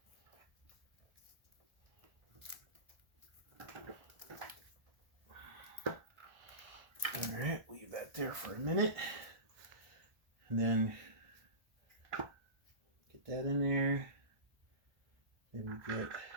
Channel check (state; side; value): late; left; 1.4 ms